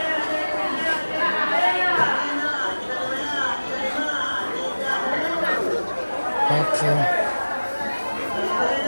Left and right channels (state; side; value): inverted; both; correlation -1.00